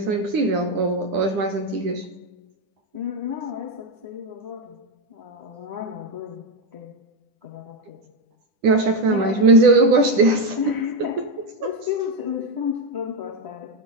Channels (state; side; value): late; left; 10 ms